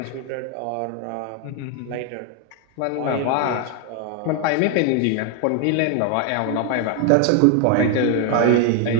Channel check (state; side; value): different; both; correlation 0.01